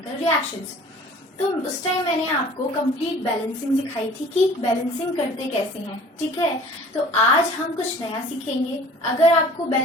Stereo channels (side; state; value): both; normal; correlation 0.48